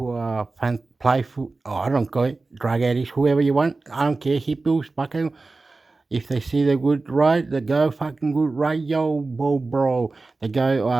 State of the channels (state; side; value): quieter; left; 3.6 dB